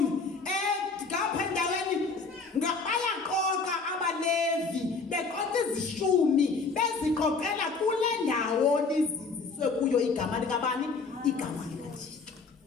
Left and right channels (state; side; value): quieter; right; 4.4 dB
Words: Ngapha endaweni bayaqoqa abaLevi beqoqa izishumi beziqoqela kule ndawo lizinziswe kuyo igama likabani igama likaThixo.